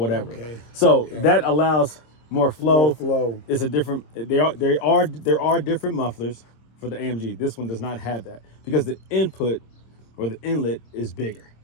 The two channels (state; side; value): late; right; 26 ms